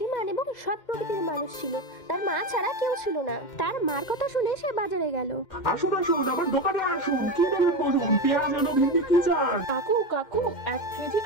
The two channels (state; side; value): late; right; 2.1 ms